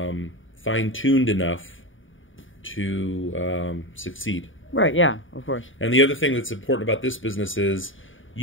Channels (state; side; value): late; right; 0.57 ms